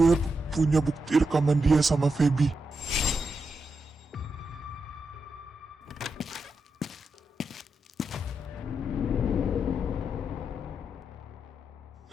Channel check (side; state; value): both; normal; correlation 0.86